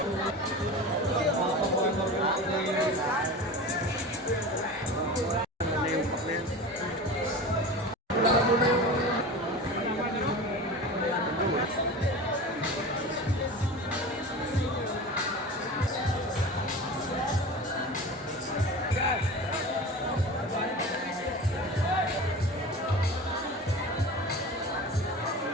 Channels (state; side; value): normal; both; correlation 0.33